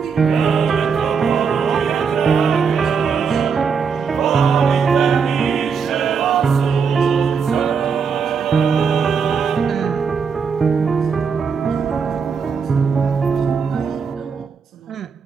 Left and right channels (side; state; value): left; quieter; 6.0 dB